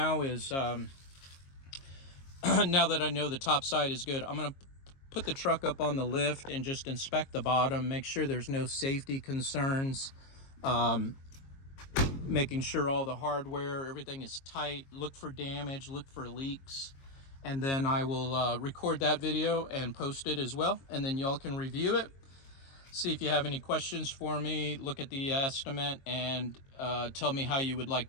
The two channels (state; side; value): late; right; 22 ms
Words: is, now that I know the top side is good, I'm going to put the truck up on the lift and just inspect the bottom, make sure there's no safety concerns, making sure all the hardware, everything is tight, look for damage, look for leaks. And then I will record that video and post it as well. And then y'all can review it. See if you have any questions for me. Look at the estimate and tell me how you would like